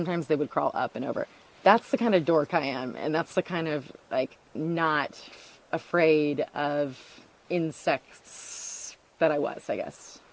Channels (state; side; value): identical; both; correlation 1.00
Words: they would crawl up and over. That's the kind of dork I am. And that's the kind of, like, not afraid of insects that I was, I guess.